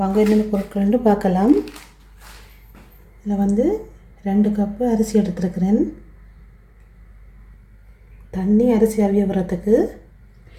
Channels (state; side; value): identical; both; correlation 1.00